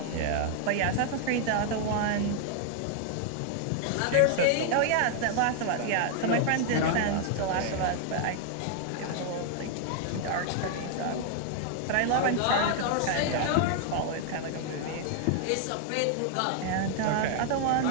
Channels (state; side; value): different; both; correlation 0.00